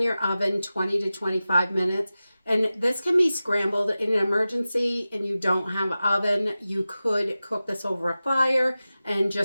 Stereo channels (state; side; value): inverted; both; correlation -0.95